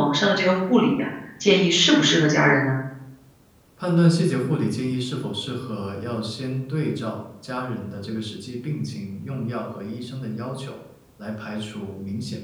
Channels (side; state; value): both; identical; correlation 1.00